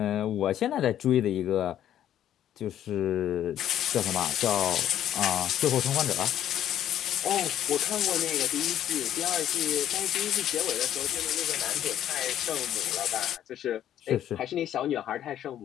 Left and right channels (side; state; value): right; quieter; 11.1 dB